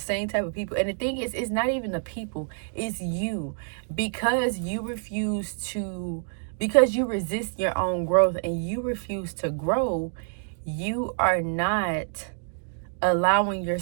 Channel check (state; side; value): silent; left; digital silence